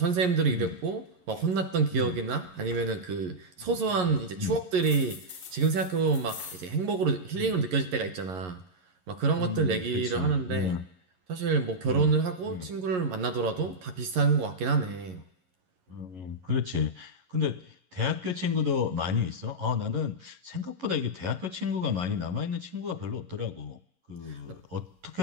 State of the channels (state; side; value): late; left; 11 ms